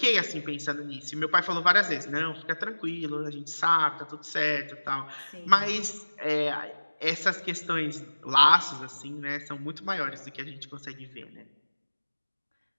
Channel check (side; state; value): both; inverted; correlation -1.00